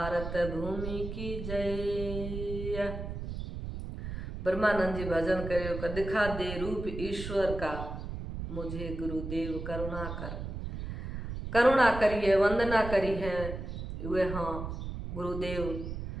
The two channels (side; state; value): right; noise; rumble, 7 dB below the sound